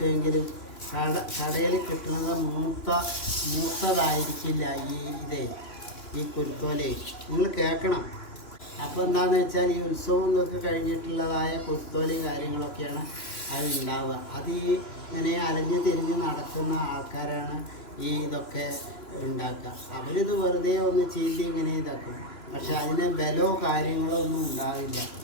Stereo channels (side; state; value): right; late; 3.0 ms